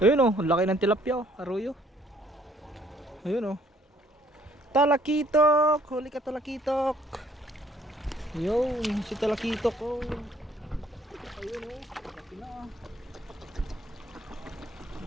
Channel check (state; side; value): normal; both; correlation 0.62